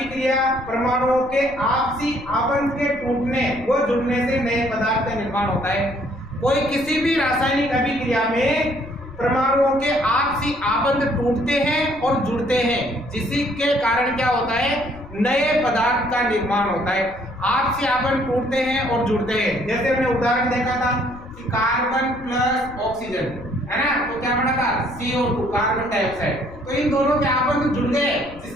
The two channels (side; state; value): left; noise; rumble, 18 dB below the sound